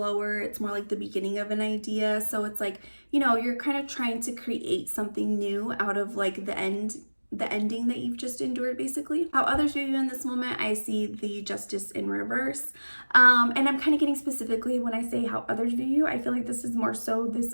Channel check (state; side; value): inverted; both; correlation -1.00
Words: It's more like the beginning of an idea. So it's like, you're kind of trying to create something new out of like the ending that you've just endured, basically. How others view you in this moment, I see the Justice in reverse. And I'm kind of getting specifically when I say how others view you, I feel like this is more so this